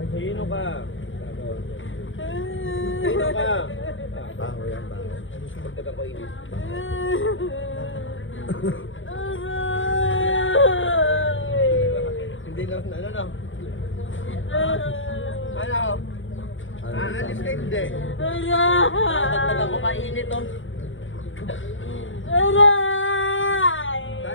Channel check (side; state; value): right; late; 0.57 ms